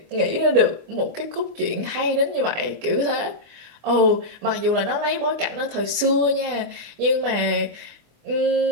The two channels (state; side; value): late; left; 24 ms